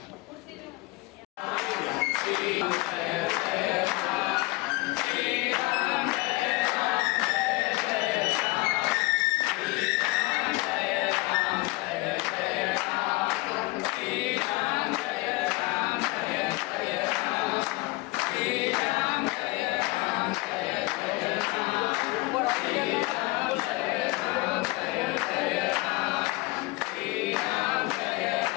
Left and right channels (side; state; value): right; quieter; 22.8 dB